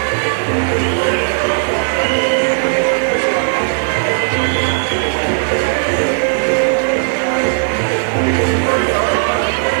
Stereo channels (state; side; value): silent; left; digital silence